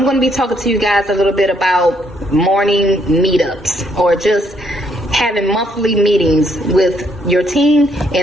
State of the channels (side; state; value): both; normal; correlation 0.71